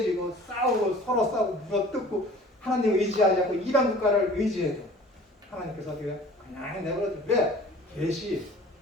싸우고 서로 싸우고 물어뜯고 하나님 의지하지 않고 이방 국가를 의지해도 하나님께서 어떻게 해요? 그냥 내버려둬. 왜? 계시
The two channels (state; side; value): normal; both; correlation 0.47